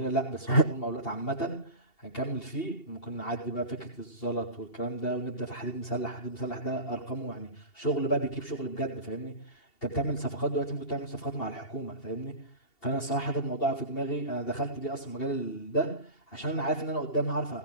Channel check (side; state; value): right; late; 2.7 ms